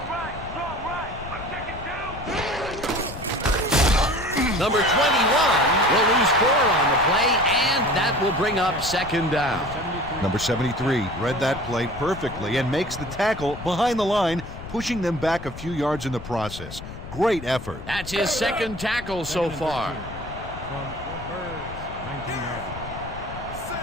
Right, strong right! I'm checking two! Number 21 will lose 4 on the play, and that will bring up second down. Number 73 read that play perfectly and makes the tackle behind the line, pushing them back a few yards in the process. Great effort. That's his second tackle so Second and far. 13 from the Birds, 19-yard line.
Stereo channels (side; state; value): left; noise; rumble, 12 dB below the sound